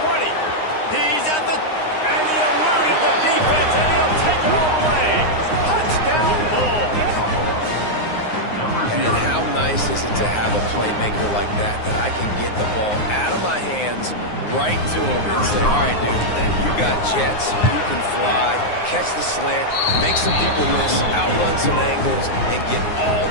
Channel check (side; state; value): right; late; 9.6 ms